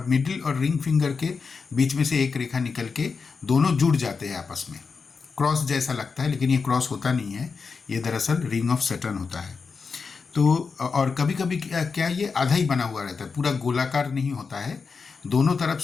मिडिल और रिंग फिंगर के बीच में से एक रेखा निकल के दोनों जुड़ जाते हैं आपस में। क्रॉस जैसा लगता है, लेकिन ये क्रॉस होता नहीं है, ये दरअसल रिंग ऑफ सैटर्न होता है। तो और कभी कभी क्या ये आधा ही बना हुआ रहता है, पूरा गोलाकार नहीं होता है, दोनों तरफ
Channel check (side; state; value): right; quieter; 5.1 dB